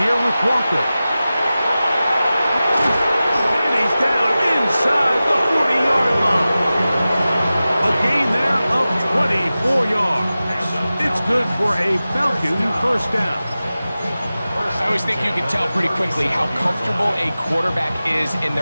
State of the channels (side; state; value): both; inverted; correlation -0.95